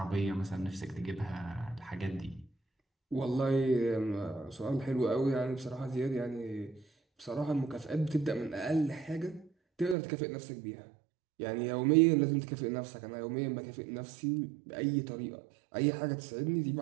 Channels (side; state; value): left; drops out; at 10.0 s